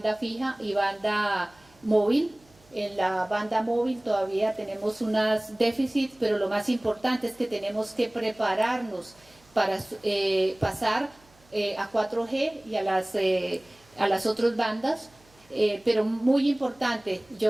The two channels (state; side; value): noise; right; hum, 30 dB below the sound